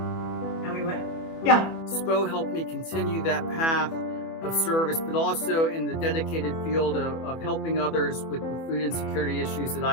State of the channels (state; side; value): late; right; 24 ms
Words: And we went, yeah. SPO helped me continue that path of service, but also in the dedicated field of helping others with food insecurity issues that